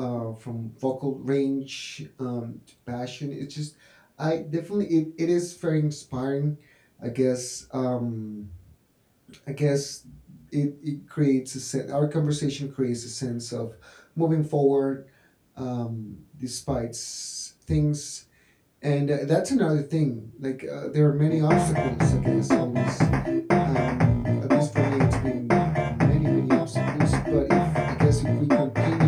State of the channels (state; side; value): identical; both; correlation 1.00